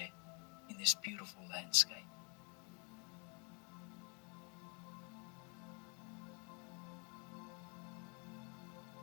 in this beautiful landscape?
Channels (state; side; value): quieter; right; 33.7 dB